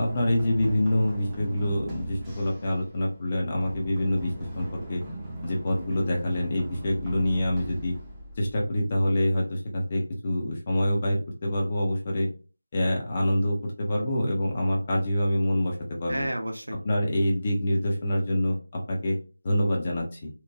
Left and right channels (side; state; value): both; inverted; correlation -0.95